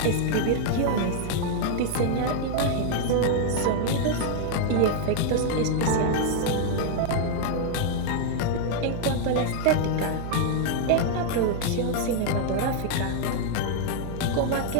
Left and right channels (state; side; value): different; both; correlation 0.00